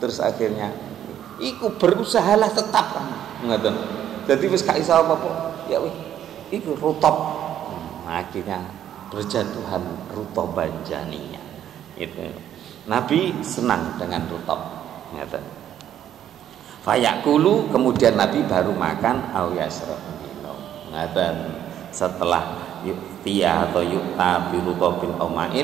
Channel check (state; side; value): quieter; left; 10.6 dB